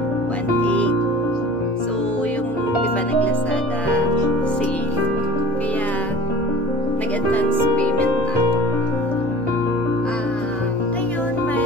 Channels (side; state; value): both; normal; correlation 0.42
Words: 1,800. So, yung, di ba, nag-Lazada sale. Kaya, nag-advance payment na ako. Ngayon,